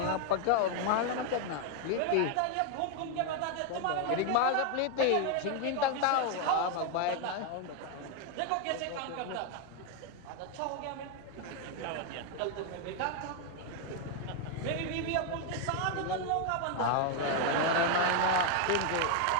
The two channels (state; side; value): different; both; correlation 0.01